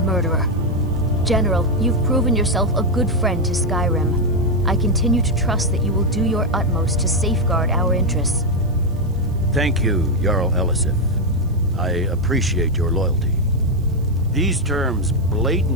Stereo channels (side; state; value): right; noise; hiss, 29 dB below the sound